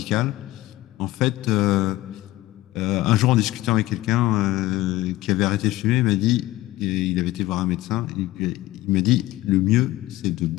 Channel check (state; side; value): quieter; right; 16.9 dB